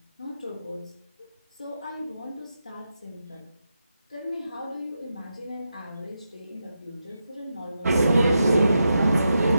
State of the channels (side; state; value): both; inverted; correlation -0.86